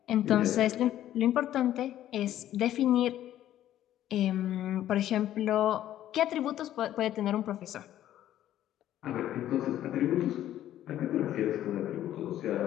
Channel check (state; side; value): quieter; right; 12.4 dB